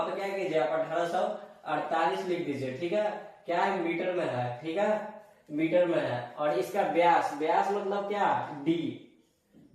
पे क्या कीजिए आप 1848 लिख दीजिए। ठीक है, क्या है, मीटर में है। ठीक है, मीटर में है। और इसका व्यास मतलब क्या, डी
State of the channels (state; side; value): identical; both; correlation 1.00